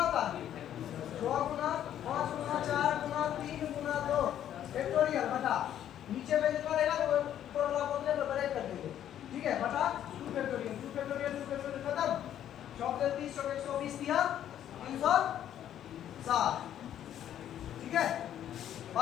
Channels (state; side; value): quieter; right; 10.8 dB